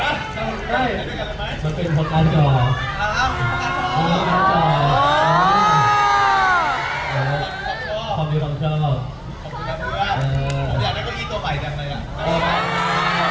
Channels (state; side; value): identical; both; correlation 1.00